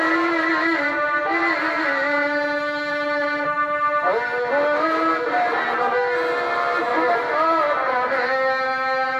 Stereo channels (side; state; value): both; identical; correlation 1.00